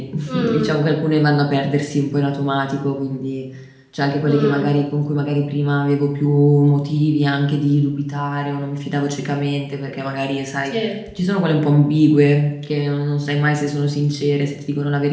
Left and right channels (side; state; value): both; identical; correlation 1.00